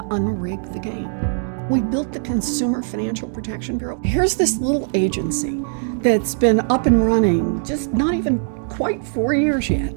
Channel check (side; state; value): left; silent; digital silence